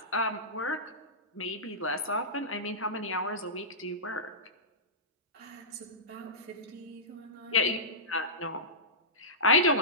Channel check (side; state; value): both; normal; correlation -0.18